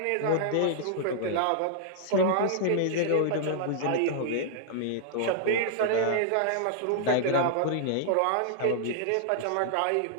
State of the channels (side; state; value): both; different; correlation -0.01